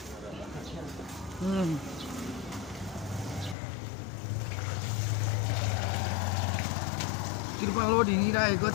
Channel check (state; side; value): drops out; right; at 3.6 s